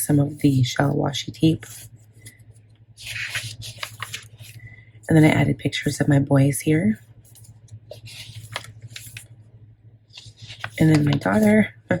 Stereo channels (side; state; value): both; identical; correlation 1.00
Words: of the shell washi tape. And then I added pictures of my boys here. And then my daughter,